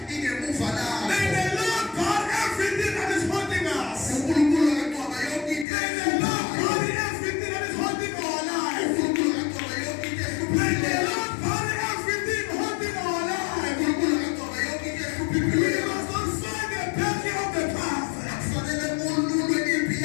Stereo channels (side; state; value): right; drops out; at 5.7 s